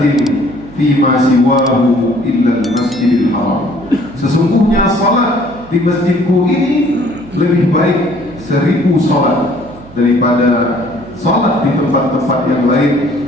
fima siwahu illa al-masjidil haram. Sesungguhnya salat di masjidku ini lebih baik 1000 salat daripada salat di tempat-tempat yang lain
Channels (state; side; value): noise; right; hum, 20 dB below the sound